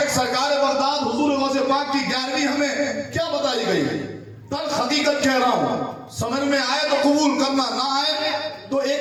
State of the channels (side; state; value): both; identical; correlation 1.00